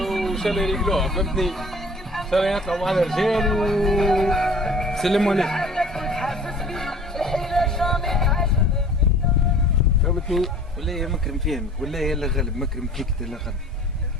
وشال رجلوها فهمتني. شال يطلعوا مع الرجال وسلموا عليه فهمتني. ولا يا مكرم فهمك ولا يلا غلب مكرم فيك لا غلب.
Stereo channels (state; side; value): normal; both; correlation 0.48